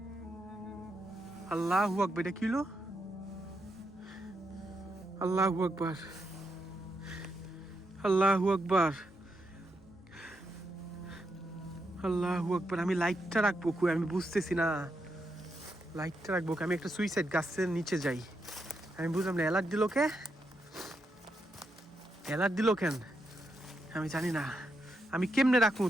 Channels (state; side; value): normal; both; correlation 0.82